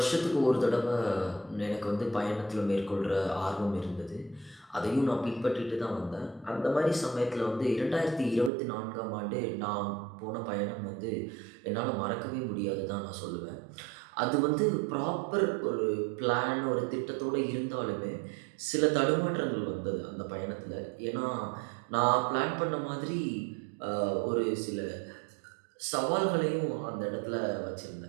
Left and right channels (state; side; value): drops out; left; at 8.5 s